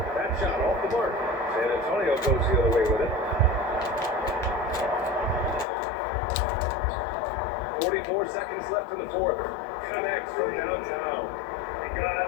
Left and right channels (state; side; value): drops out; right; at 5.7 s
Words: That shot off the mark. San Antonio goes the other way with it. 44 seconds left in the fourth. Connects from downtown. And guys,